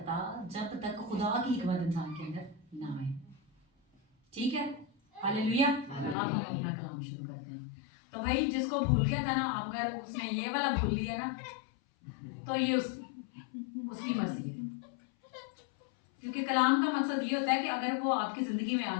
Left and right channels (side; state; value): right; drops out; at 6.2 s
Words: जब तक खुदा की हिकमत इंसान के अंदर ना आए। ठीक है, हालेलुया। अब हम अपना कलाम शुरू करते हैं। तो भाई जिसको भूल गया था ना, अगर उसने ये वाला भूल लिया ना, तो ये उसकी मर्जी है। क्योंकि कलाम का मकसद ये होता है कि अगर वो आपकी जिंदगी में